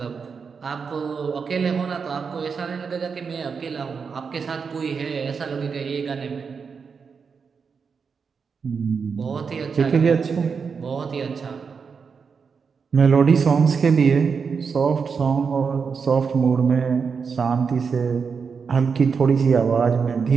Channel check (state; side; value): quieter; left; 5.7 dB